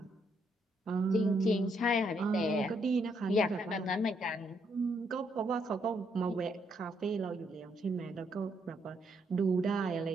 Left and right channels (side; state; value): both; normal; correlation 0.74